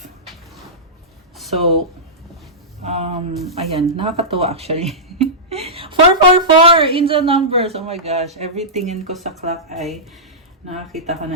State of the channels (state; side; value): normal; both; correlation -0.16